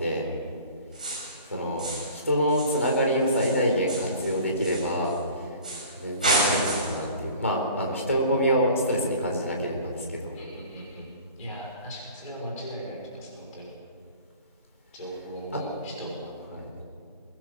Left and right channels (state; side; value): inverted; both; correlation -0.44